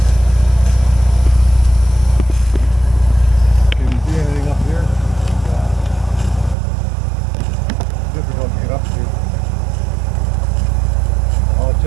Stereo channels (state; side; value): drops out; left; at 6.6 s